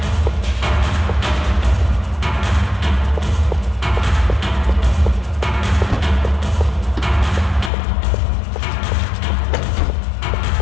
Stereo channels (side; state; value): right; drops out; at 7.7 s